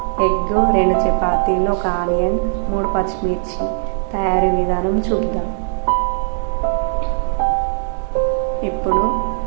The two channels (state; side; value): silent; left; digital silence